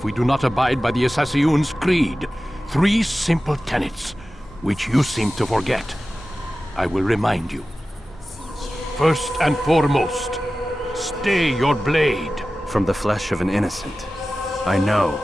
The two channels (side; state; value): both; normal; correlation 0.95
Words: we do not abide by the Assassin's creed. 3 simple tenets, which you seem to forget. I will remind you. First and foremost, stay your blade. From the flesh of an innocent. I know.